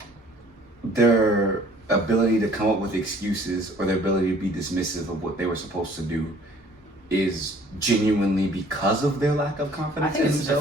their ability to come up with excuses or their ability to be dismissive of what they were supposed to do is genuinely because of their lack of I confidence think in it's a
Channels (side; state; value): both; normal; correlation 0.55